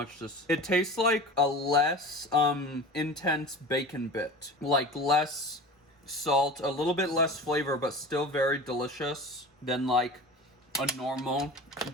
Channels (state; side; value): normal; both; correlation 0.35